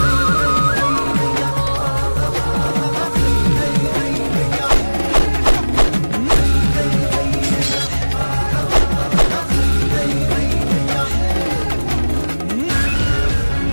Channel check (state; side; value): inverted; both; correlation -1.00